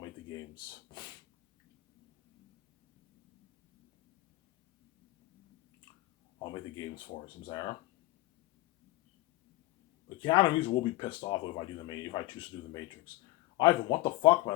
the games. I'll make the games for it, Zara. But Keanu Reeves will be pissed off if I choose to do the Matrix. Ivan, what the fuck,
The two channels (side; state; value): right; quieter; 18.3 dB